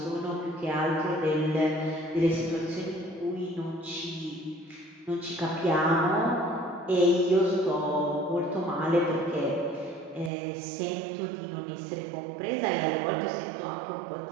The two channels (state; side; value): drops out; left; at 10.3 s